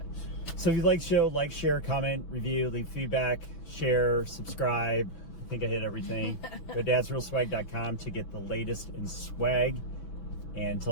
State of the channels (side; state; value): right; late; 6.0 ms